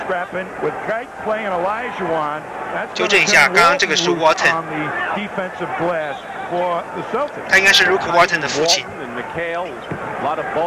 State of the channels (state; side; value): identical; both; correlation 1.00